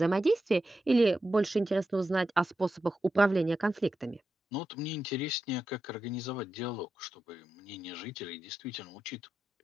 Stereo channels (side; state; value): both; normal; correlation 0.89